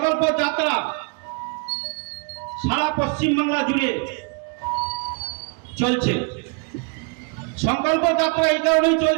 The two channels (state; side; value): quieter; left; 34.2 dB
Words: যাত্রা সারা পশ্চিম বাংলা জুড়ে চলছে। সংকল্প যাত্রা এই কারণেই